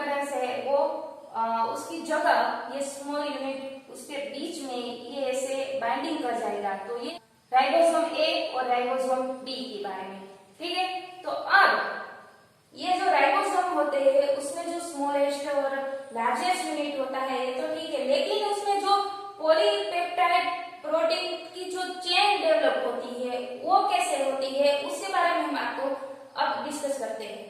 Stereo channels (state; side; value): identical; both; correlation 1.00